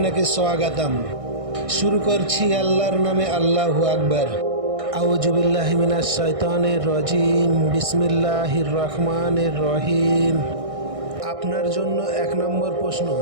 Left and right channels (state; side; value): late; left; 1.6 ms